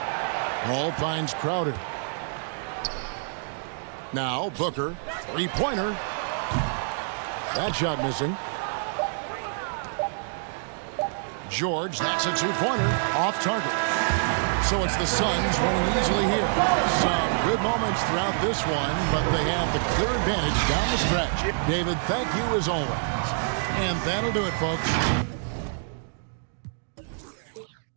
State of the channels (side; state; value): left; silent; digital silence